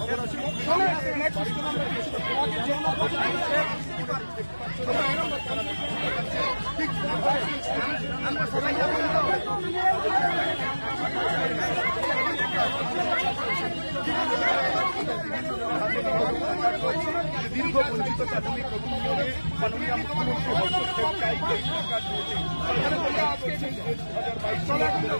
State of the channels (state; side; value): inverted; both; correlation -1.00